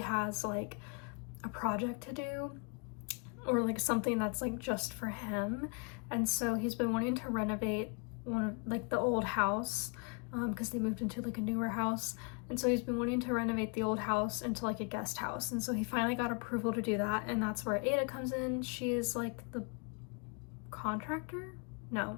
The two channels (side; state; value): right; quieter; 36.0 dB